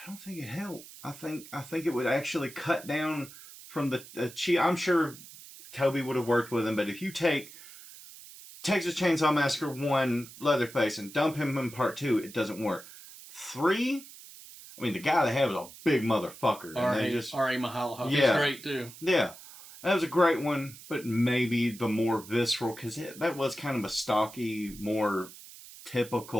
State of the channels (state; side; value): noise; right; hiss, 17 dB below the sound